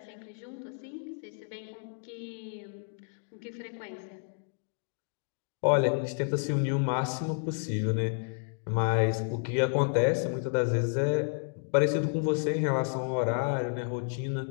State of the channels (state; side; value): silent; right; 56 dB below the other